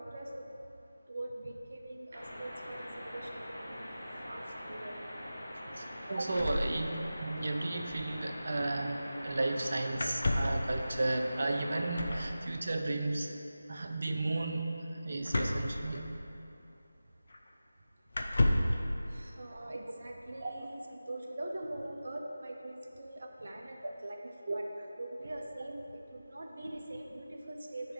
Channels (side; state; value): both; inverted; correlation -0.95